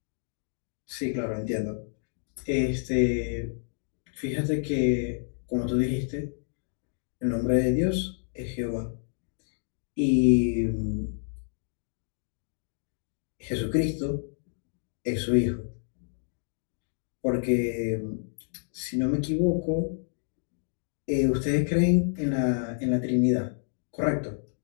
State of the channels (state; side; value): silent; right; digital silence